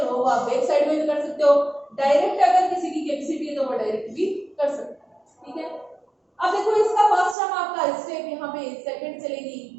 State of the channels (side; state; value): left; drops out; at 7.4 s